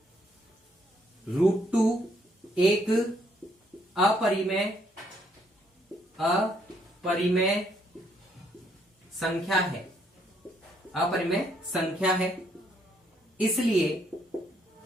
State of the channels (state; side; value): normal; both; correlation 0.70